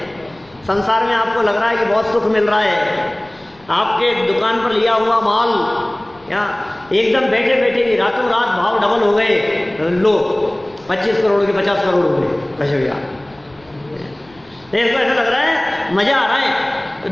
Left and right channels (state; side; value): noise; left; rumble, 29 dB below the sound